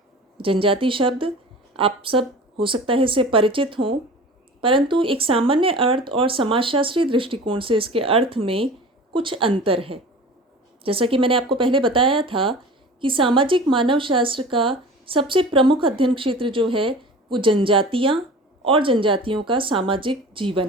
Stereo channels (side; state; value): both; normal; correlation 0.39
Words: जनजाति शब्द आप सब हो सकता है इससे परिचित हों, परंतु एक सामान्य अर्थ और समाजशास्त्रीय दृष्टिकोण से इसके अर्थ में कुछ अंतर है। जैसा कि मैंने आपको पहले बताया था कि सामाजिक मानव शास्त्र का सबसे प्रमुख अध्ययन क्षेत्र जो है वो जनजातियाँ और जनजातियों का सामाजिक